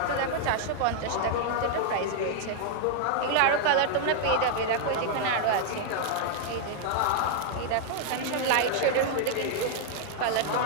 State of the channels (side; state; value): both; different; correlation 0.00